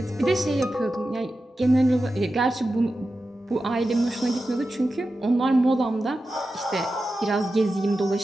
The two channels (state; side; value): normal; both; correlation 0.92